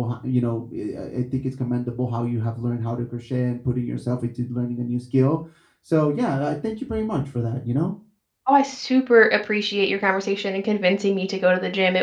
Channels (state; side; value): identical; both; correlation 1.00